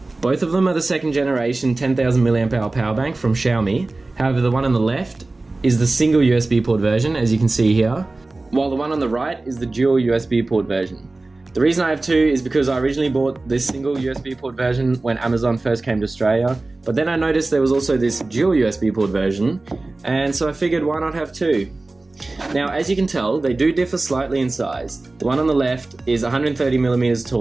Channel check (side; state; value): left; quieter; 3.2 dB